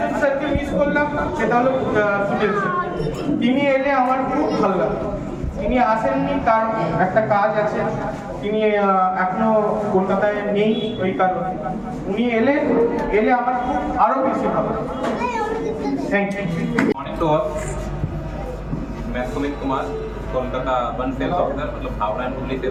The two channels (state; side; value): identical; both; correlation 1.00